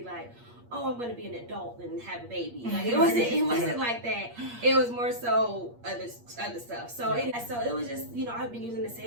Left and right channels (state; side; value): late; left; 8.5 ms